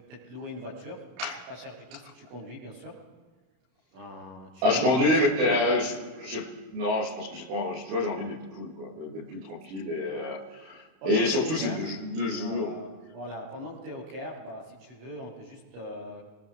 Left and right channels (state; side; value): late; left; 31 ms